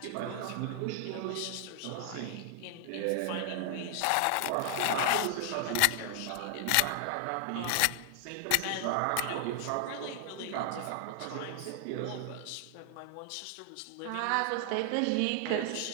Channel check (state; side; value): different; both; correlation 0.00